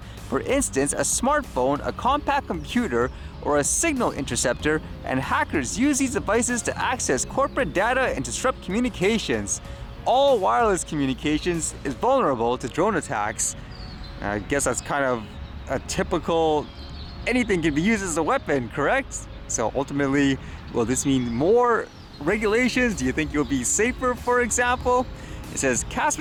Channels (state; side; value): identical; both; correlation 1.00